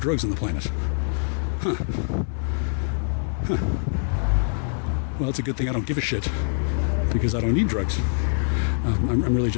drugs on the planet. Huh. Well, it's a good thing I don't give a shit because I don't need drugs. I'm really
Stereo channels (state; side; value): silent; right; 56 dB below the other